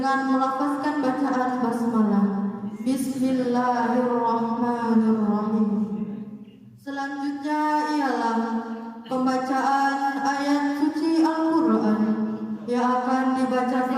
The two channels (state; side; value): identical; both; correlation 1.00